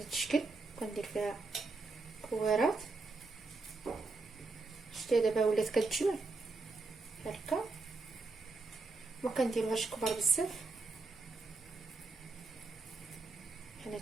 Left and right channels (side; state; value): left; quieter; 3.7 dB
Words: الشكل، كندير فيها كويرات. شتي دابا ولات كتجمع هكا، ما كنديروهاش كبار بزاف بحال